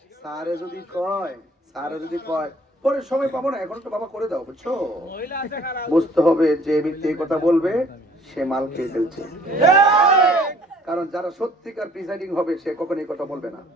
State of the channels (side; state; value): both; normal; correlation 0.57